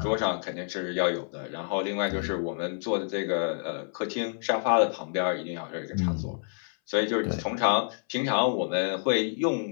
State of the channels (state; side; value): silent; right; 59 dB below the other